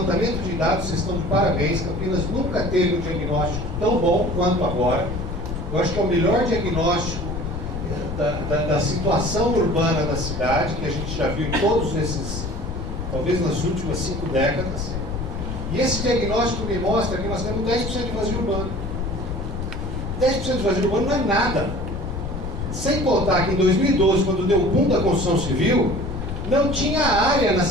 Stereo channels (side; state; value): left; noise; rumble, 5 dB below the sound